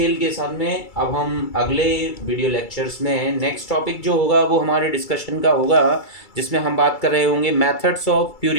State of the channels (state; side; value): late; right; 2.3 ms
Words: के साथ में अब हम अगले वीडियो लेक्चर्स में नेक्स्ट टॉपिक जो होगा वो हमारे डिस्कशन का होगा, जिसमें हम बात कर रहे होंगे methods of